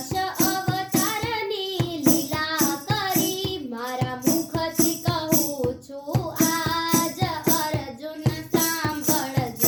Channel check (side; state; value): both; identical; correlation 1.00